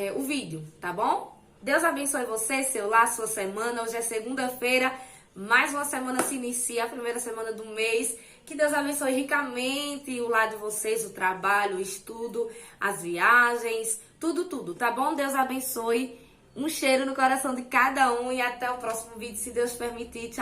o vídeo, tá bom? Deus abençoe você, seu lar, sua semana. Hoje é segunda-feira, mais uma semana se inicia, a primeira semana do mês. Que Deus abençoe ricamente o lar de vocês, o trabalho, o estudo, as viagens, tudo, tá bom? Deus abençoe. Um cheiro no coração de cada um e até o próximo vídeo, se Deus permitir.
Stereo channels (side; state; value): both; identical; correlation 1.00